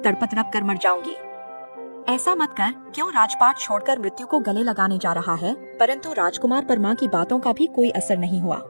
तड़प कर मर जाऊंगी। ऐसा मत कर, क्यों राजपाट छोड़कर मृत्यु को गले लगाने जा रहा है? परंतु राजकुमार पर माँ की बातों का भी कोई असर नहीं हुआ।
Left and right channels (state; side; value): inverted; both; correlation -1.00